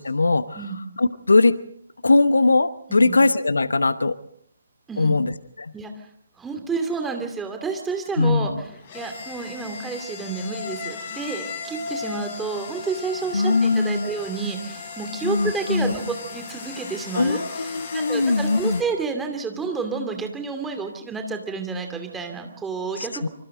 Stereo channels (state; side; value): inverted; both; correlation -0.70